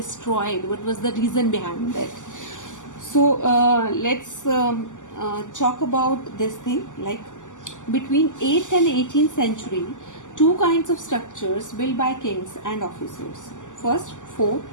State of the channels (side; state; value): right; late; 0.87 ms